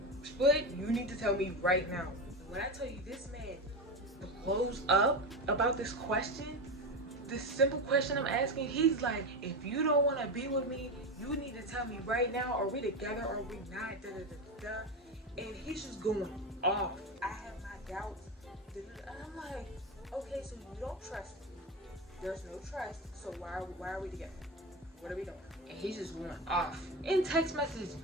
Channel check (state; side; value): normal; both; correlation 0.18